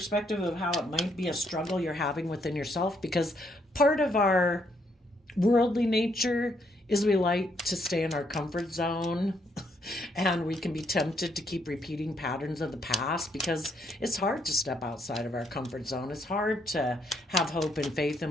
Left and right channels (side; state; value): both; normal; correlation 0.73